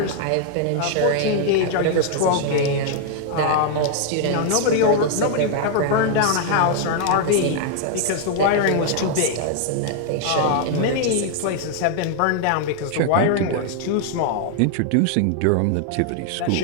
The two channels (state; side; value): different; both; correlation 0.00